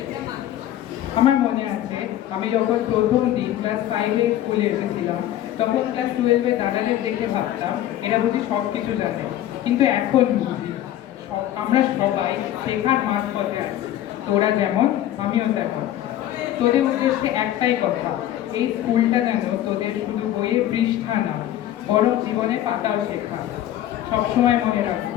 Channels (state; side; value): quieter; right; 12.6 dB